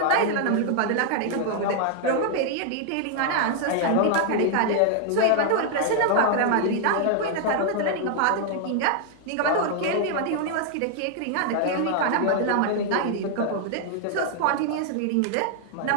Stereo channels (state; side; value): different; both; correlation 0.00